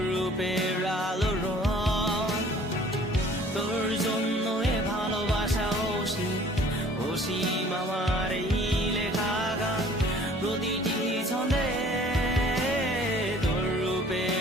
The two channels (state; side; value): normal; both; correlation 0.52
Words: রূপের আলো রং। তোর জন্য এ ভালোবাসা অসীম, অসীম আমার এই লেখা গান, প্রতিটি ছন্দে তোর